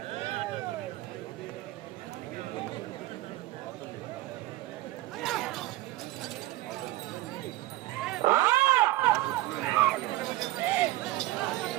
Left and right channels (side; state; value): left; quieter; 17.2 dB